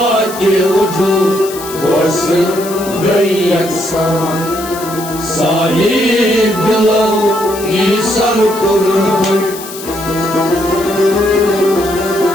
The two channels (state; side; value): noise; left; hiss, 13 dB below the sound